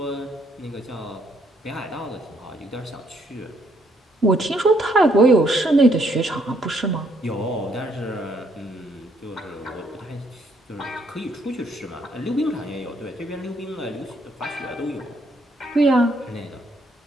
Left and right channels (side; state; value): both; normal; correlation 0.70